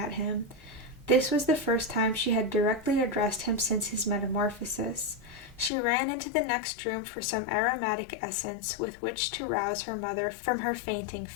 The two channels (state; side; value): drops out; right; at 5.7 s